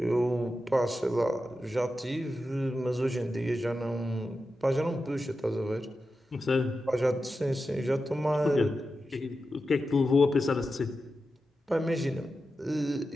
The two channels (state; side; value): normal; both; correlation 0.91